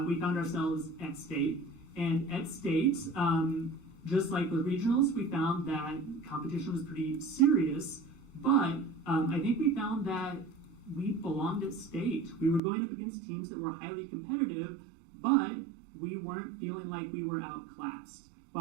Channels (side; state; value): left; drops out; at 12.6 s